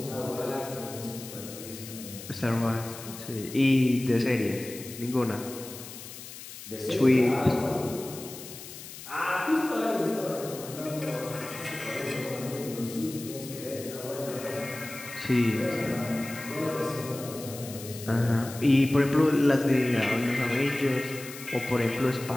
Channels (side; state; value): left; noise; hiss, 13 dB below the sound